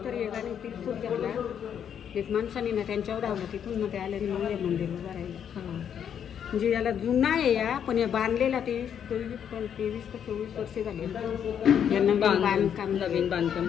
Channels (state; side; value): quieter; right; 8.6 dB